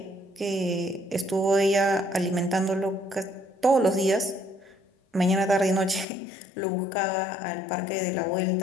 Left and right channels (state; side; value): drops out; right; at 6.1 s